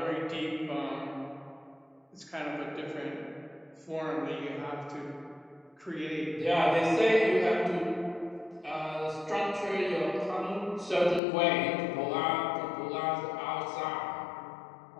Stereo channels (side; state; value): right; drops out; at 11.2 s